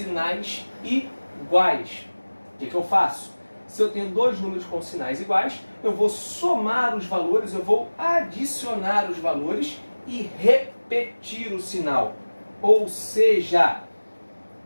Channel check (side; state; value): both; inverted; correlation -1.00